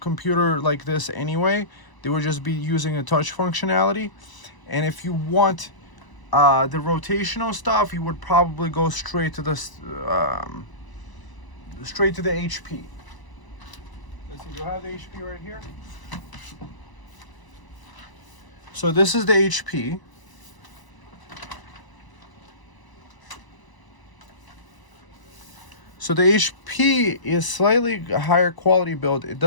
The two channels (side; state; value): right; late; 1.0 ms